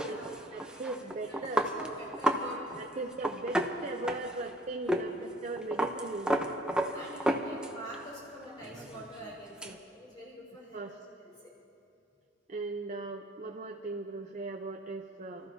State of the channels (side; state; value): both; normal; correlation 0.59